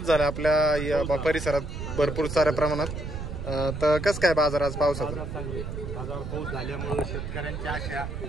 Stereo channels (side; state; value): right; noise; rumble, 7 dB below the sound